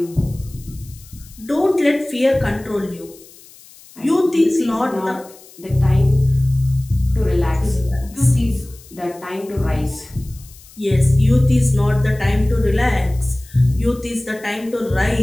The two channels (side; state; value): left; noise; hiss, 23 dB below the sound